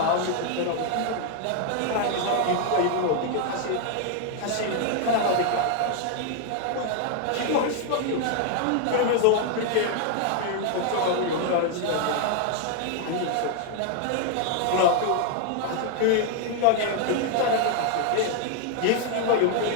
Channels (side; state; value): both; different; correlation 0.00